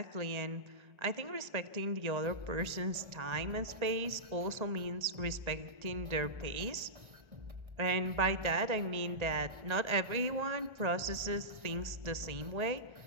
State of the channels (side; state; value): left; late; 1.3 ms